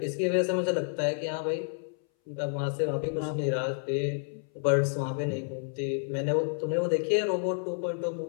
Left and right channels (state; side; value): silent; right; 58 dB below the other